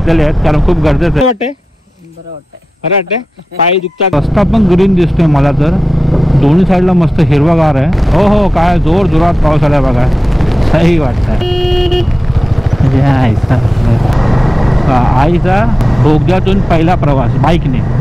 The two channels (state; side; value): normal; both; correlation 0.94